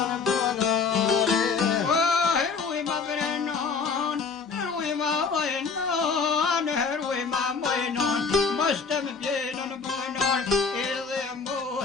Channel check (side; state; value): right; quieter; 5.2 dB